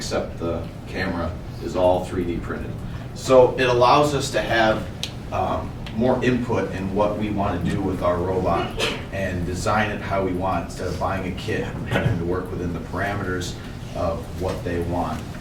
the camera is all 3D printed. So it allows us to have more input in what we want to do with our robot and design it how we want instead of buying a kit and having to work within the parameters of what they want.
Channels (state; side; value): identical; both; correlation 1.00